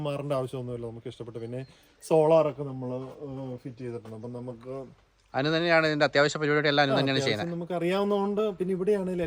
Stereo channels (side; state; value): both; identical; correlation 1.00